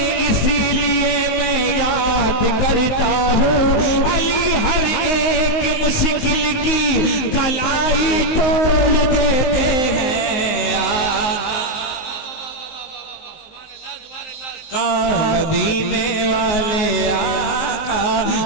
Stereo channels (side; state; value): right; late; 19 ms